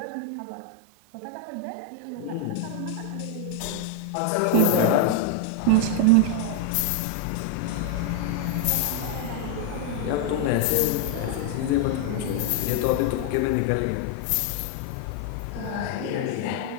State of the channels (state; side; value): different; both; correlation 0.00